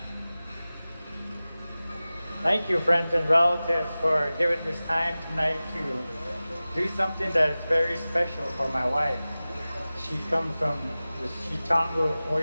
Thank you, friends and relatives, for giving this time tonight to do something that is very special for my wife. She comes from the Chitango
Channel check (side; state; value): both; inverted; correlation -0.97